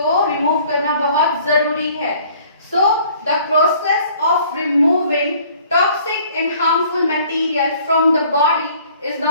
रिमूव करना बहुत जरूरी है। So the process of removing toxic and harmful material from the body is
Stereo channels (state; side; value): inverted; both; correlation -0.56